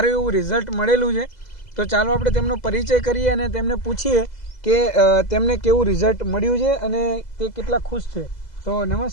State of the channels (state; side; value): late; right; 2.0 ms